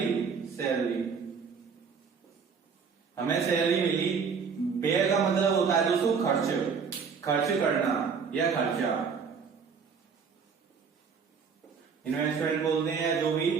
सैलरी, हमें सैलरी मिली। व्यय का मतलब होता है दोस्तों खर्च करना या खर्चा, इन्वेस्टमेंट बोलते हैं, या जो भी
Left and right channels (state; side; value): quieter; left; 5.9 dB